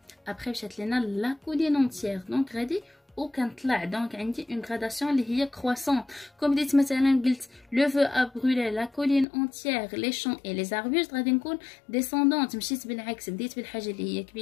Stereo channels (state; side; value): drops out; right; at 9.2 s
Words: ابخي مشات لينا لا كولين اونتيير. دونك غادي وكنطلع دونك عندي اون غراداسيون اللي هي كرواسون. كوم بديت مثلا قلت لو فو ا برولي لا كولين اونتيير لي شون اي لي زاربوست، غادي نكون ديسوندونت، مشيت بالعكس، بديت بالحاجه اللي هي